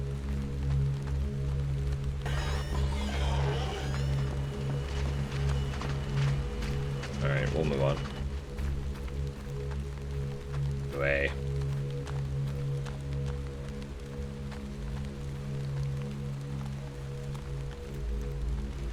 Alright, we'll move on. Away.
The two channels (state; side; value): identical; both; correlation 1.00